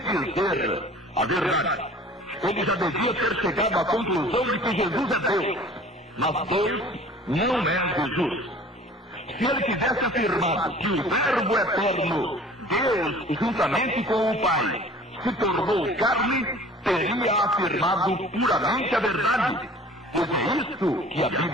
a verdade. Ele já devia ter chegado à conclusão de que Jesus é Deus, mas Deus não é Jesus. Se ele tivesse afirmado que o Verbo eterno, Deus, juntamente com o Pai, se tornou carne, teria afirmado puramente a verdade, pois é isso que a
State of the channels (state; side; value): normal; both; correlation 0.47